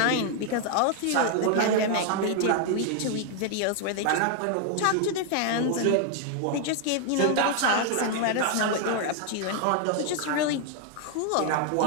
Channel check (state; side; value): different; both; correlation 0.00